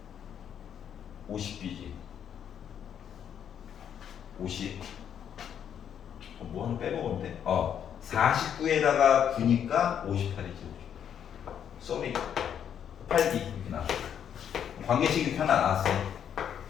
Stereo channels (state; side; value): quieter; right; 8.8 dB